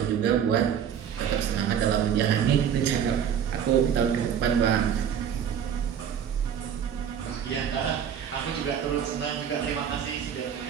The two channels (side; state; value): left; quieter; 8.5 dB